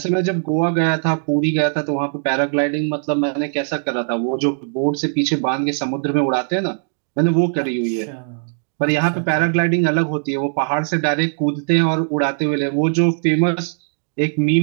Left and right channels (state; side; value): silent; left; digital silence